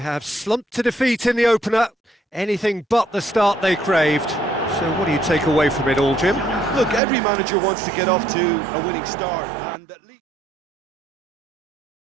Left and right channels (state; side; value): drops out; left; at 7.0 s